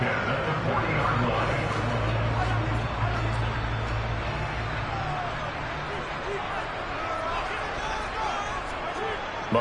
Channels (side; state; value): both; identical; correlation 1.00